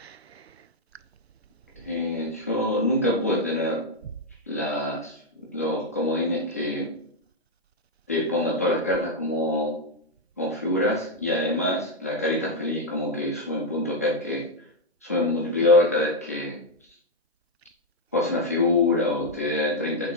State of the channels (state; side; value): normal; both; correlation 0.02